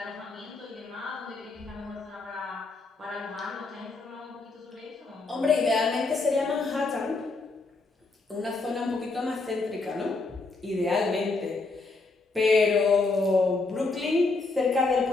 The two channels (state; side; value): quieter; right; 3.7 dB